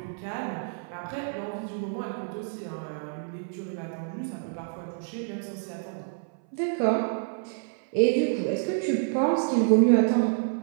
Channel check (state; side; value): silent; left; 59 dB below the other